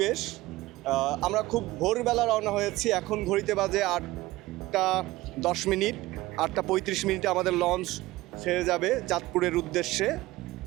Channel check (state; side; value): quieter; left; 18.4 dB